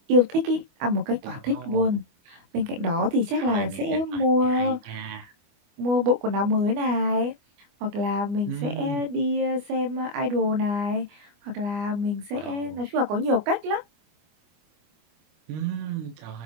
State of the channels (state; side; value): late; left; 25 ms